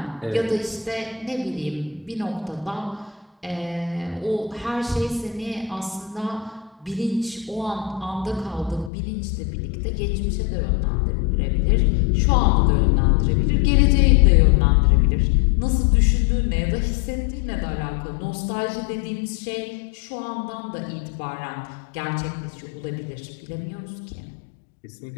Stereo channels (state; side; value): drops out; right; at 8.9 s